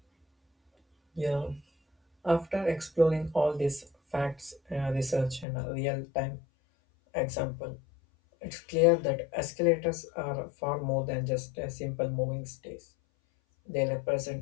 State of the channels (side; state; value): right; drops out; at 5.5 s